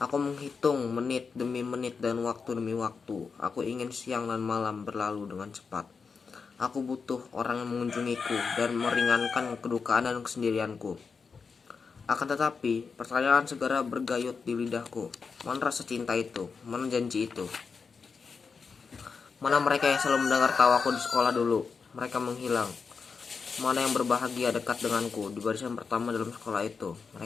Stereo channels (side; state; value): right; quieter; 5.3 dB